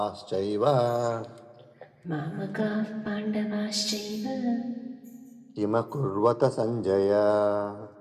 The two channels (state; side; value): identical; both; correlation 1.00